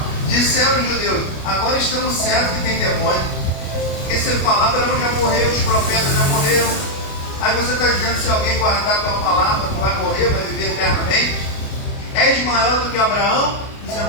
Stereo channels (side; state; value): right; late; 29 ms